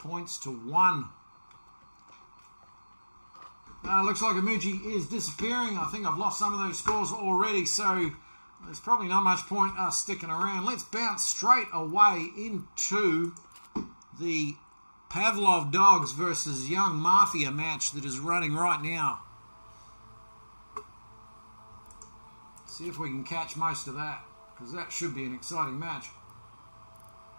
to 1. Looks like Imoogi is disappearing. I think I've lost some of those scores already, so there's probably not much point us sticking around. Let's bounce straight away into the Pavlov Dogs versus Young Mafia match that is running right now. See if we can catch most of that, because that should be an exciting match.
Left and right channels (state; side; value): inverted; both; correlation -1.00